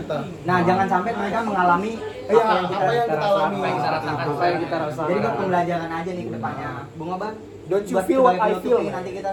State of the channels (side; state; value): both; identical; correlation 1.00